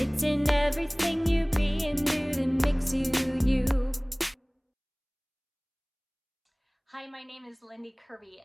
in everything you be and do that makes you you. Hi, my name is Lindy Kerby,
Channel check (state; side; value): identical; both; correlation 1.00